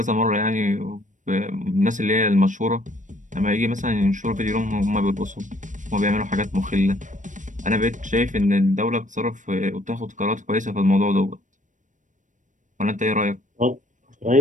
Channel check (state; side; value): late; left; 0.37 ms